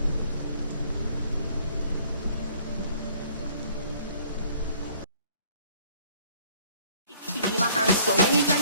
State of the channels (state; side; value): inverted; both; correlation -0.59